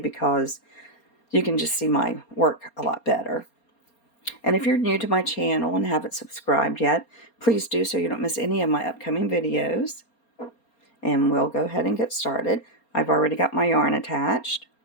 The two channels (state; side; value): late; right; 4.3 ms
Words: you can just see my work a lot better. And if you're new to my channel and haven't subscribed yet, please do so you don't miss any of my upcoming videos. And we'll go ahead and get started. I've already got my yarn attached,